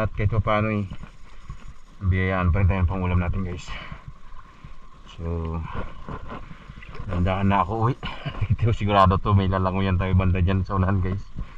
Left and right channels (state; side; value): identical; both; correlation 1.00